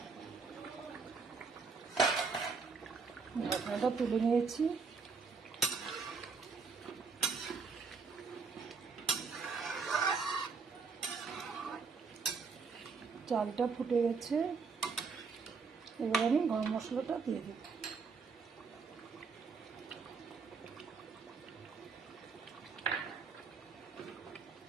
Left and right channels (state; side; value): quieter; left; 5.0 dB